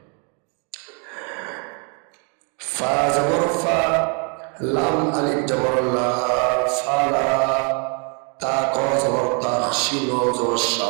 ফা জবর ফা, লাম আলিফ জবর লা, ফালা। তা ক জবর তা, শিন জবর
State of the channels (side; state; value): left; quieter; 37.3 dB